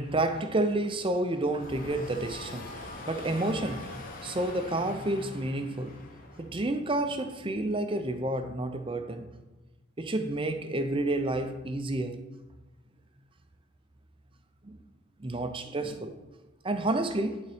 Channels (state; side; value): normal; both; correlation 0.52